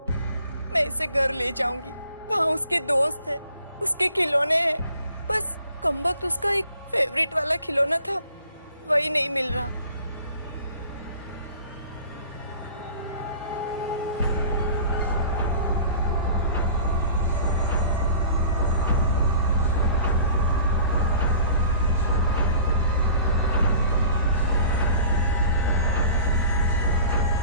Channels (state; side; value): inverted; both; correlation -0.47